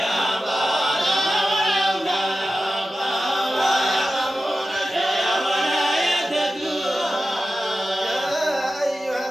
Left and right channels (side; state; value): both; normal; correlation 0.93